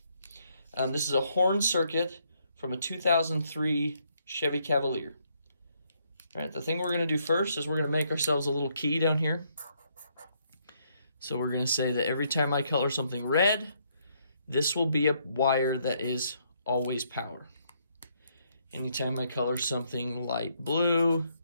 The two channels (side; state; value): both; inverted; correlation -0.72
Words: This is a horn circuit from a 2003 Chevy Cavalier. All right, the thing we're going to do first is we're going to make ourselves a little key down here. So we're going to say that every time I color something red, this will be a wire that is always power. Anytime I color something light blue,